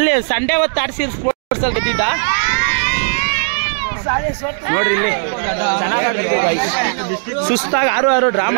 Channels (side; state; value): left; silent; digital silence